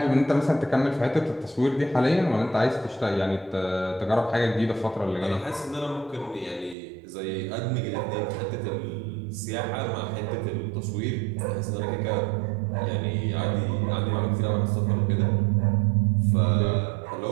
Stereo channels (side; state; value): left; drops out; at 6.8 s